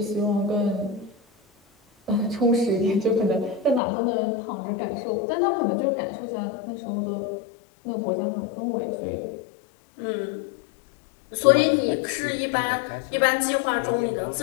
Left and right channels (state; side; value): drops out; right; at 3.8 s